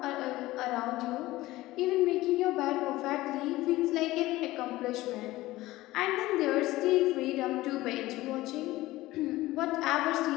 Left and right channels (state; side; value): quieter; right; 17.7 dB